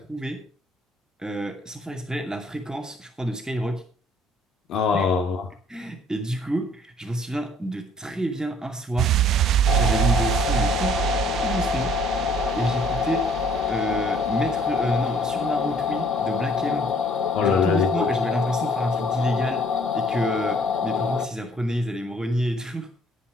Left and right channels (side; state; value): both; normal; correlation 0.59